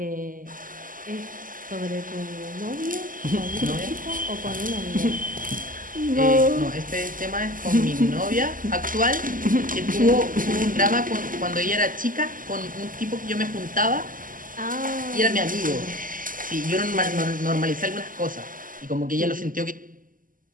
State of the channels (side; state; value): left; late; 0.40 ms